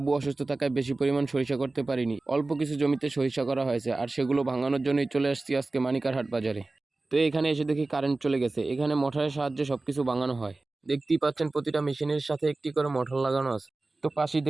অসুস্থ থাকায় বেশি পরিমাণ সরিষা করতে পারিনি, অল্প কিছু জমিতে সরিষা করা হয়েছে, আর সেগুলো ভাঙানোর জন্যই চলে আসছি আজকে মানিকারহাট বাজারে। তো এখানে এসে দেখি কারেন্ট চলে গেছে। এখানে মোটরের সাহায্যে সবকিছু ভাঙানো হয়। দেখতেই পাচ্ছেন প্রতিটা মেশিনের সাথে একটি করে মোটর লাগানো আছে। তো পাশেই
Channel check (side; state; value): left; quieter; 3.2 dB